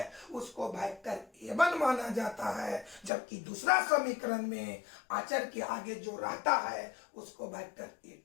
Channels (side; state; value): right; drops out; at 3.1 s